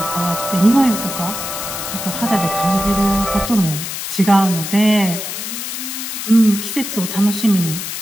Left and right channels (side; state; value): left; noise; hiss, 6 dB below the sound